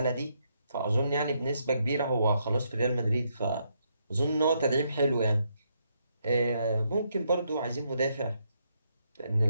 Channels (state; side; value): inverted; both; correlation -0.77